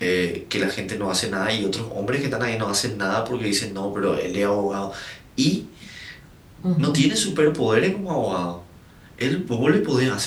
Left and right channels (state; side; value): identical; both; correlation 1.00